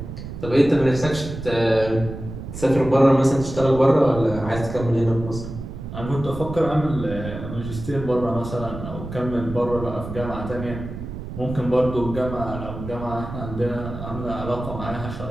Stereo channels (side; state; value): right; noise; rumble, 9 dB below the sound